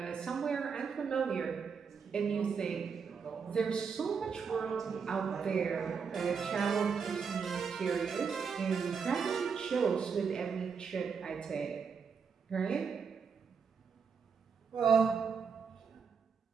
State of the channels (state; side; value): quieter; left; 6.1 dB